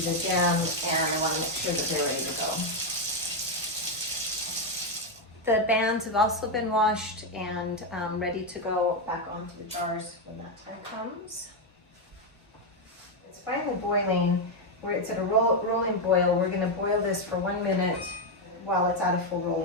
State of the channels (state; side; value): normal; both; correlation 0.05